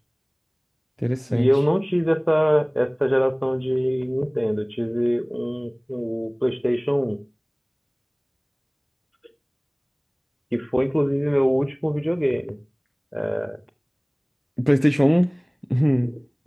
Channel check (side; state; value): both; identical; correlation 1.00